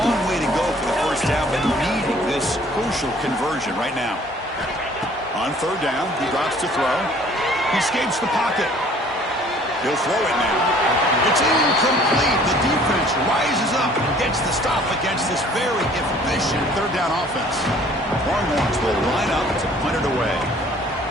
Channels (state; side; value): normal; both; correlation 0.55